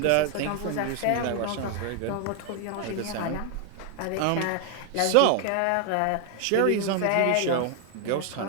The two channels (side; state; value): both; different; correlation 0.00